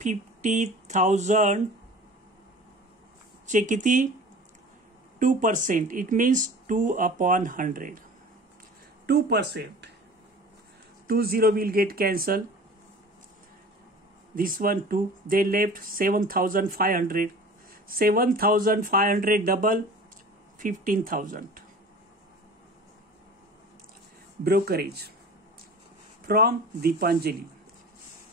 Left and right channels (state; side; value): normal; both; correlation 0.41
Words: चे किती 2%. It means 2/100. 2%. 20 will get cancelled. This one 2. They left 7,500. 7,500 double 15,000. Brokerage from Deepanjali